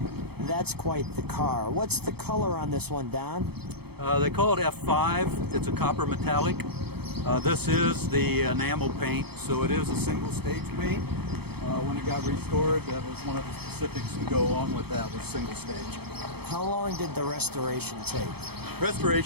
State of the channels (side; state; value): left; late; 0.97 ms